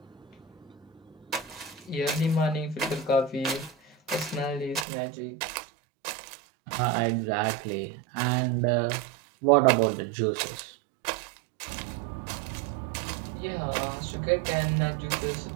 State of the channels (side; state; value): left; drops out; at 4.9 s